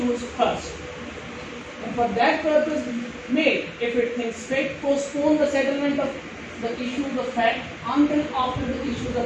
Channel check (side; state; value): both; identical; correlation 1.00